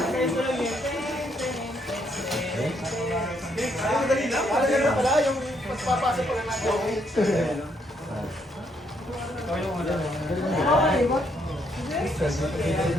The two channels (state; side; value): normal; both; correlation 0.73